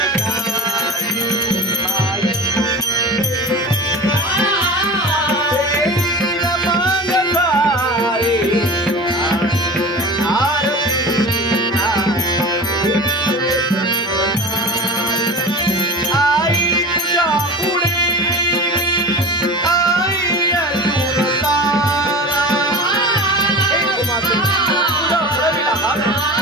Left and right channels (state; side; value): normal; both; correlation 0.33